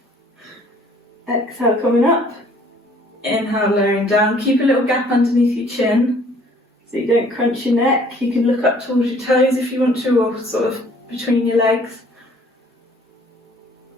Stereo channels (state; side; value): normal; both; correlation 0.57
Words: Exhale, coming up. Inhale, lowering down. Keep a little gap underneath your chin so you don't crunch your neck. You can look up towards your toes if you want to, or sort of between your legs.